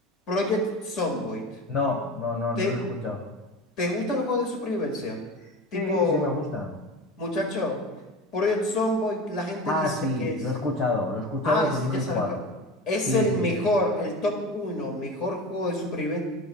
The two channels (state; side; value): normal; both; correlation 0.30